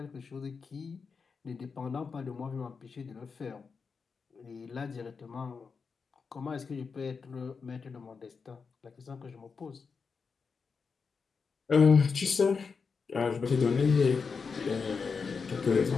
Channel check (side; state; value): right; quieter; 5.3 dB